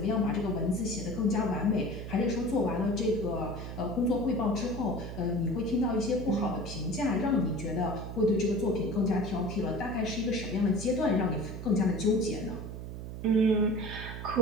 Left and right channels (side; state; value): right; noise; hum, 8 dB below the sound